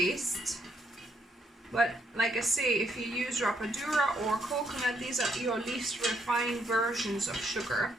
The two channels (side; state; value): both; normal; correlation 0.73